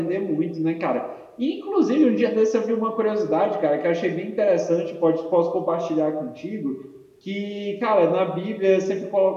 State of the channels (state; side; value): identical; both; correlation 1.00